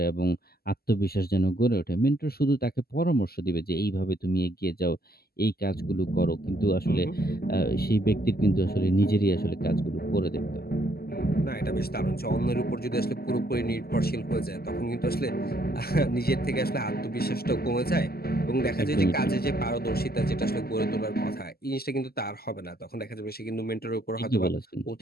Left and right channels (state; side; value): late; right; 0.45 ms